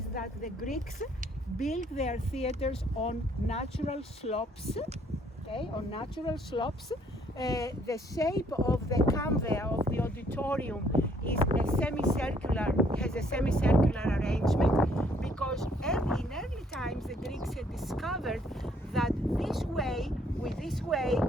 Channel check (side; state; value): both; normal; correlation 0.65